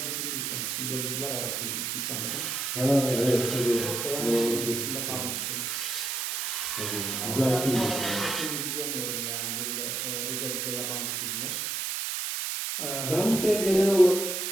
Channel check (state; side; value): noise; right; hiss, 1 dB below the sound